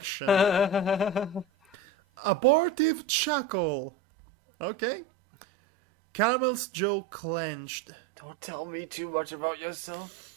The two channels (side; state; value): left; drops out; at 3.0 s